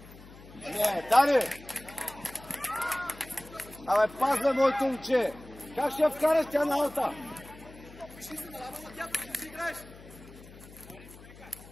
не, Дани! Абе, пазва моето момче! Как ще я вкараш тя на алта? Вижи се на лава на тя, ти си играеш!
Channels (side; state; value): left; noise; hum, 19 dB below the sound